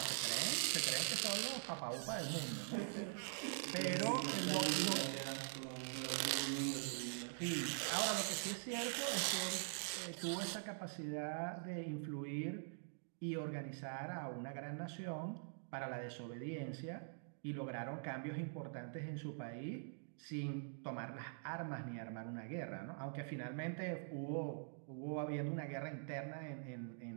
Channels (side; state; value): left; silent; digital silence